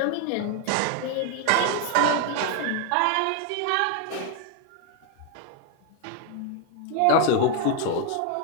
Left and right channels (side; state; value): both; different; correlation 0.01